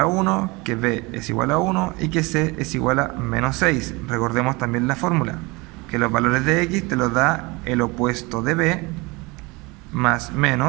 1, que B es igual a 1 y que C es igual a menos 6. Recordemos también la fórmula, que los valores de X te los da el opuesto de B más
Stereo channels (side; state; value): left; quieter; 25.2 dB